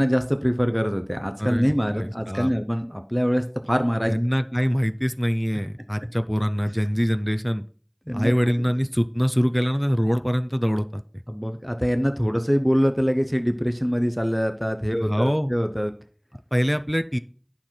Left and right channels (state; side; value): identical; both; correlation 1.00